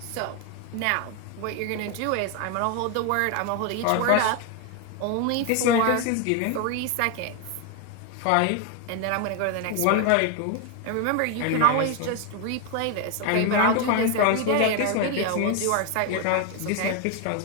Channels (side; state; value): both; different; correlation 0.01